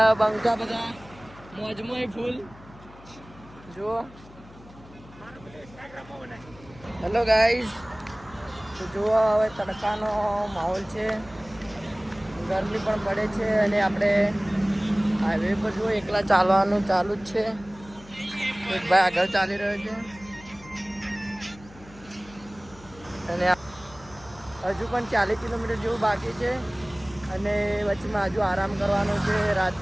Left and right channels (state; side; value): noise; left; hum, 21 dB below the sound